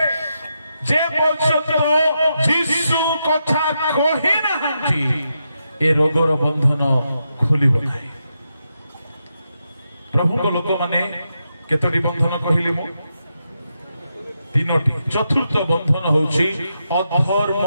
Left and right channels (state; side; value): inverted; both; correlation -0.85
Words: ଯେ ପର୍ଯ୍ୟନ୍ତ ଯୀଶୁ କଥା କହି ନାହାନ୍ତି ଏ ରୋଗର ବନ୍ଧନ ଖୋଲିବ ନାହିଁ। ପ୍ରଭୁଙ୍କ ଲୋକମାନେ କେତୋଟି ବନ୍ଧନ କହିଲି ମୁଁ? 3ଟି। ଚତୁର୍ଥ ବନ୍ଧନ ହଉଛି